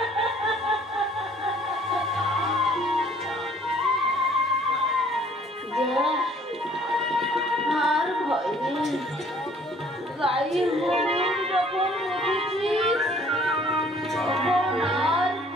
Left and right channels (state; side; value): normal; both; correlation 0.57